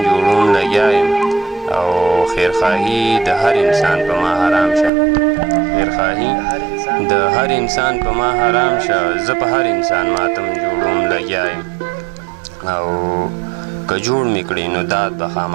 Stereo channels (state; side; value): drops out; left; at 4.9 s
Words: جوړوم لګیا یم. او خیرخواهي د هر انسان په ما حرام شه، خیرخواهي د هر انسان په ما حرام شه، زه په هر انسان ماتم جوړوم لګیا یم. او که جوړ مې کړي نو داد به